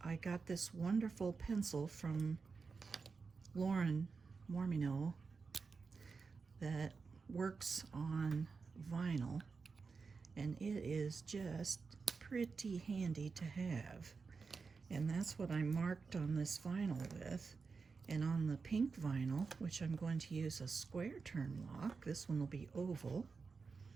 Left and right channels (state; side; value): quieter; left; 4.8 dB